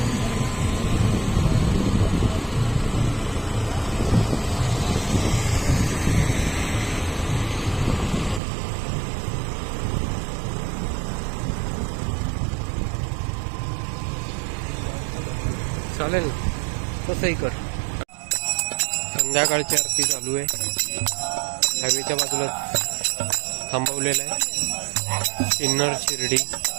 चालेल. तसंही कर. संध्याकाळची आरती चालू आहे. हायवेच्या बाजूला थांबवलेला आहे. सिन्नर शिर्डी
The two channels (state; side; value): drops out; left; at 8.4 s